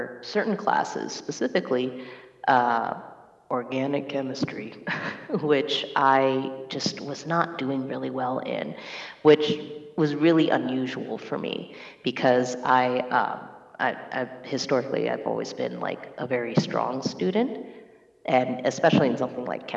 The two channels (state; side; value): identical; both; correlation 1.00